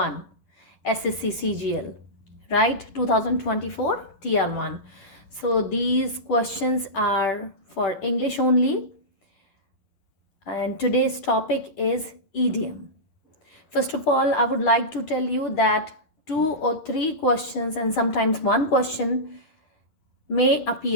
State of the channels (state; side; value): late; right; 10 ms